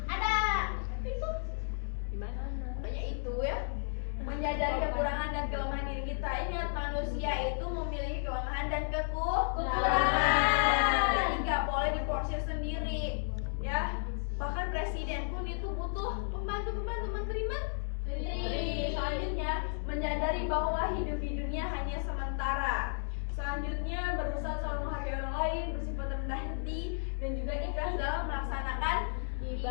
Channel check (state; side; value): silent; right; digital silence